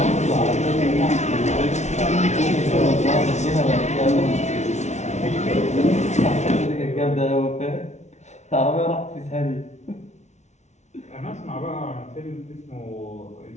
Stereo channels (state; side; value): late; right; 0.33 ms